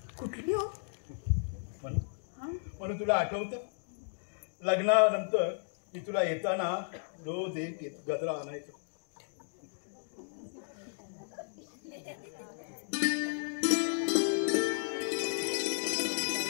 कुठली हो? म्हणून तुला आठवतं लग्नानंतर मी तुला येताना रोज एक गजरा आणायचो.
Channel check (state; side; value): silent; right; digital silence